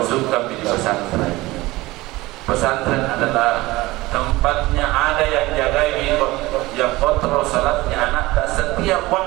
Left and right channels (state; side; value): quieter; left; 19.7 dB